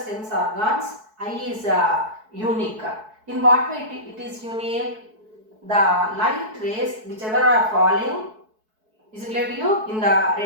organs, eye is unique. In what way it is unique? The light rays whichever are falling, is it clear to you, in the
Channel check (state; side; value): late; left; 4.6 ms